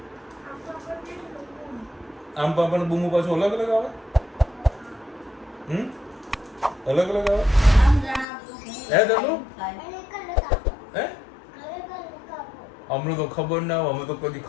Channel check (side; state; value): right; drops out; at 8.2 s